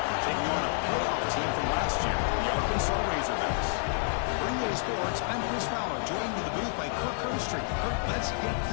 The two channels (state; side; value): silent; right; 58 dB below the other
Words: taking on a playoff team from last year, the Arkansas Razorbacks. For EA Sports, I'm Chris Fowler, joined in the booth by Kirk Herbstreit. Kirk, let's get